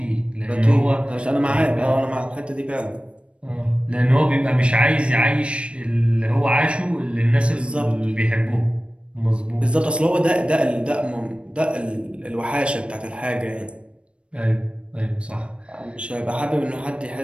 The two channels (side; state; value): left; late; 0.059 ms